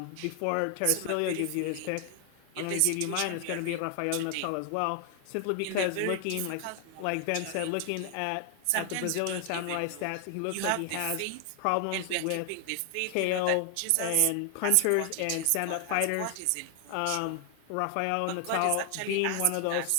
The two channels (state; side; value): different; both; correlation 0.00